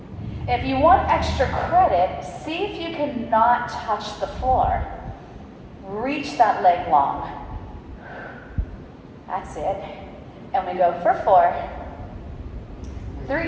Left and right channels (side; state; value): both; identical; correlation 1.00